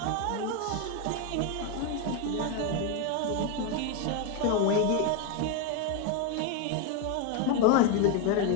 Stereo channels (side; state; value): both; different; correlation 0.01